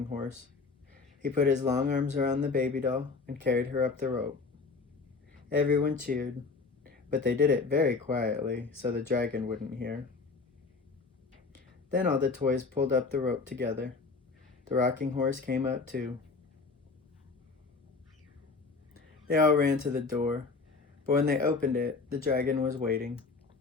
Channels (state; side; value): quieter; right; 4.3 dB